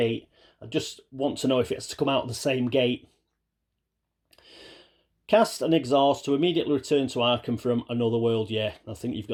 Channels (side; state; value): both; identical; correlation 1.00